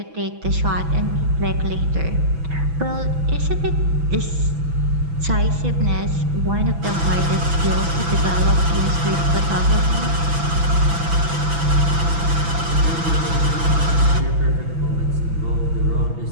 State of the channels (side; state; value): left; late; 6.0 ms